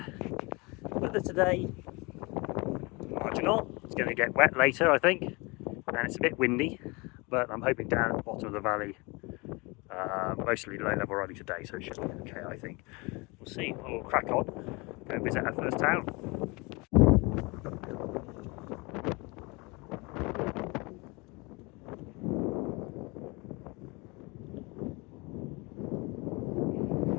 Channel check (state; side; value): quieter; right; 26.9 dB